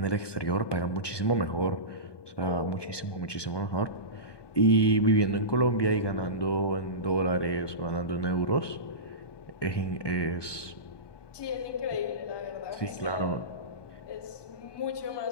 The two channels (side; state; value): right; late; 1.2 ms